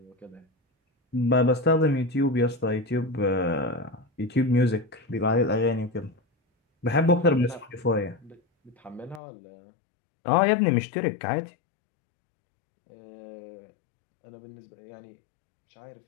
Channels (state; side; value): drops out; right; at 9.2 s